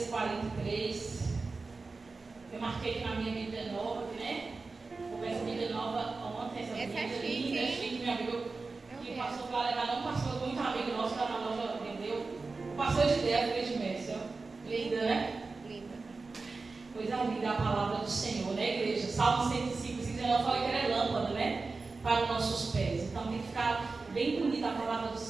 43. Eu marquei aqui na minha Bíblia nova, né? Começa a Bíblia nova ontem. Essa é Bíblia chique, linda, hein? chique, meu amigo. Que passou para levar, não passou muito amigo nosso que está na loja, entendeu? Passou de ideia, fez de mestre. Linda, né? Linda. Coisa linda a palavra do Senhor, né, igreja? Salmo 105, 19, eu falei que era lâmpada, né? Para os nossos pés. Então tem que ficar bem bonita a palavra do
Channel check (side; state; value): left; quieter; 4.0 dB